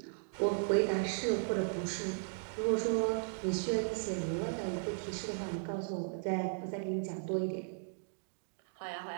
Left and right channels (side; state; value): left; silent; digital silence